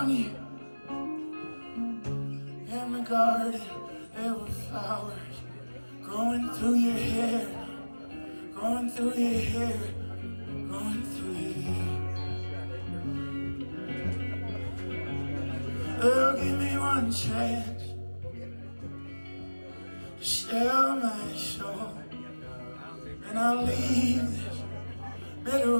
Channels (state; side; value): inverted; both; correlation -1.00